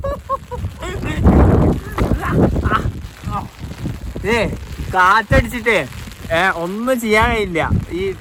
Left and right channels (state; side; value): identical; both; correlation 1.00